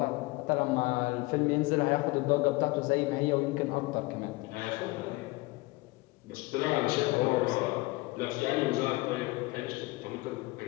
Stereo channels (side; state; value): right; quieter; 22.6 dB